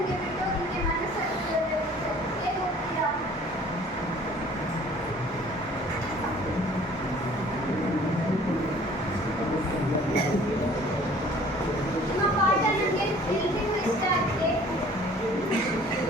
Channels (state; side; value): normal; both; correlation 0.52